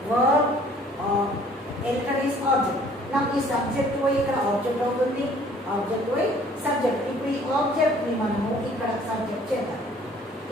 verb, a letter is object. Now ఈ subject పోయి ఇక్కడ object అవుతుంది, object పోయి subject. ఇప్పుడు ఈ object ని మనము ఇక్కడ subject చేద్దాం.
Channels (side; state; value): both; normal; correlation 0.56